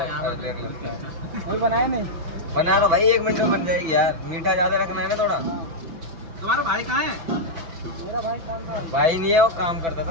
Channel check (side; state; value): left; late; 6.0 ms